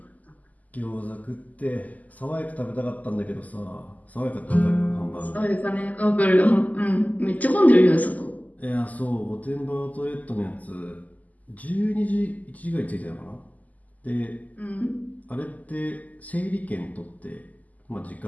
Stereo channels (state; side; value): late; right; 0.077 ms